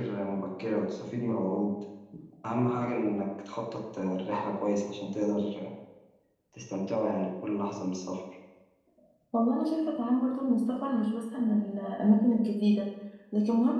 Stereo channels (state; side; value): identical; both; correlation 1.00